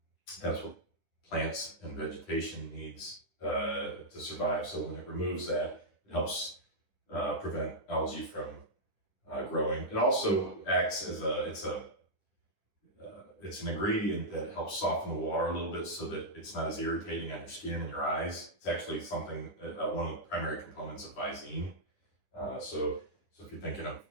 that's what plants and vegetation needs to survive. So when it removes that, it helps prevent algae from growing. It also acts as it's an ingredient that helps soften the water a little bit so that it's not as irritating on your skin and your eyes. It's actually something, one of the primary components of Visine. So if you're thinking of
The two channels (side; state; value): right; late; 10 ms